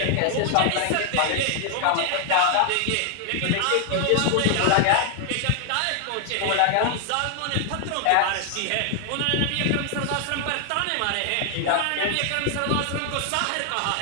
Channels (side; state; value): both; different; correlation 0.00